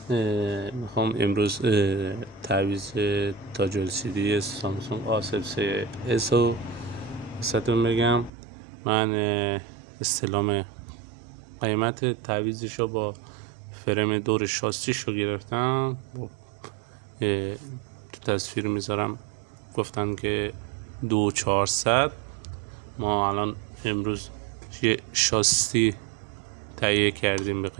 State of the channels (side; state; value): left; drops out; at 8.3 s